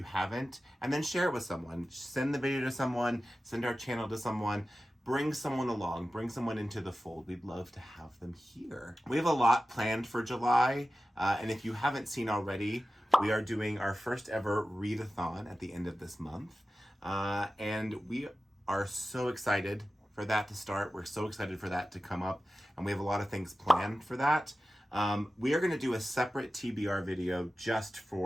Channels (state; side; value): normal; both; correlation 0.95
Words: haven't, and then share it with someone. Send the video to someone, send our channel to someone, bring someone along, bring someone into the fold. We'd love to have them here. We have a lot planned for July, and if you haven't seen already, we are doing our first ever Readathon at the end of this month, and we are so excited for that to start. We're so excited for that to come up, and we have a lot of things planned for that. We are going to do a separate TBR video just